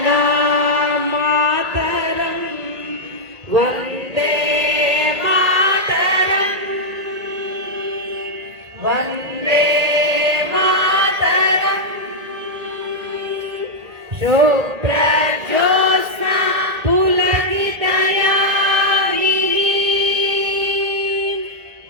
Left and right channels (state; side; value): late; left; 1.8 ms